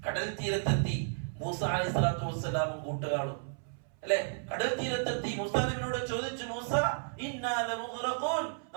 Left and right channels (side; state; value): left; silent; 56 dB below the other